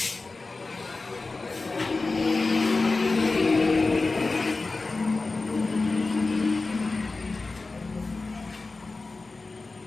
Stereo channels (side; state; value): right; quieter; 3.6 dB